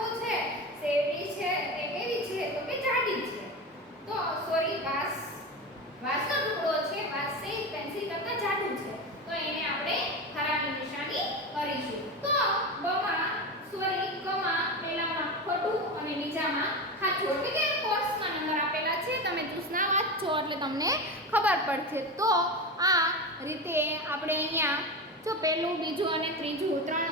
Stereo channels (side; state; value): both; normal; correlation 0.22